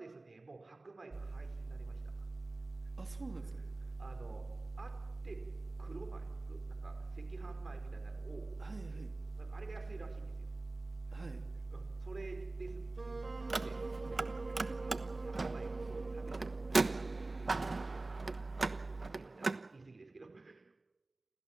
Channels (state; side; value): quieter; left; 3.1 dB